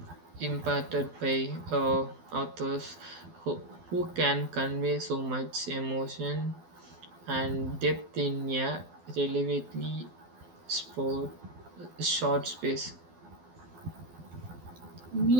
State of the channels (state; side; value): late; left; 12 ms